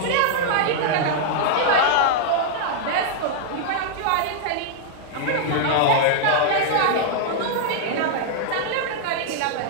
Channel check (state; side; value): different; both; correlation -0.01